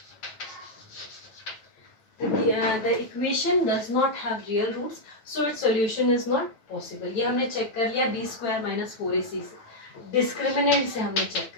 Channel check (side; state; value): right; late; 9.1 ms